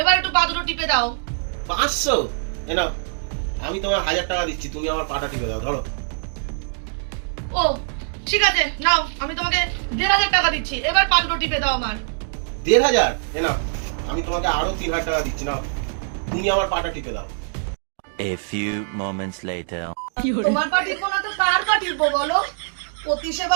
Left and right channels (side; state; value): left; silent; digital silence